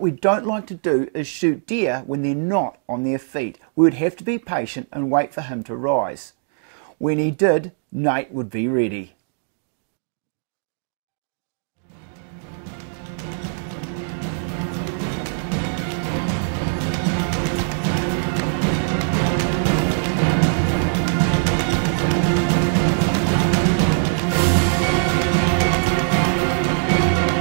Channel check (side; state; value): left; silent; digital silence